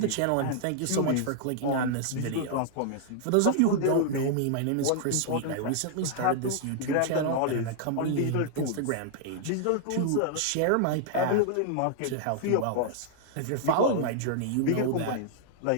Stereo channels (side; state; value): both; different; correlation -0.01